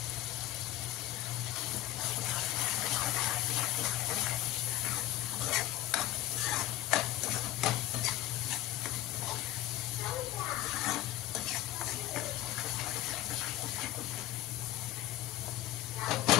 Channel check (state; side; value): quieter; right; 14.6 dB